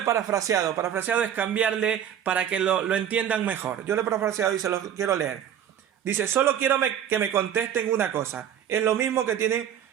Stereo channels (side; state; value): left; quieter; 9.6 dB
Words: parafraseado. Parafraseado es cambiarle para que lo entiendan mejor. Yo le he parafraseado y se lo quiero leer. Dice, solo quiero que me contesten una cosa. Es lo mismo que tienen